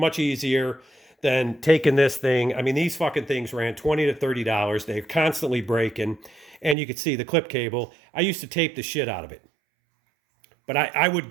easier than taking this thing. I mean, these fucking things ran $20 to $30. They're constantly breaking. And you can see the clip cable. I used to tape the shit out of it. But I would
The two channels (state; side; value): drops out; left; at 6.8 s